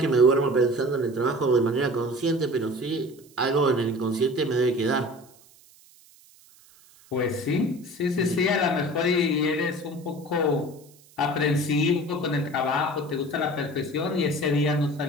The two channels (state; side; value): noise; right; hiss, 27 dB below the sound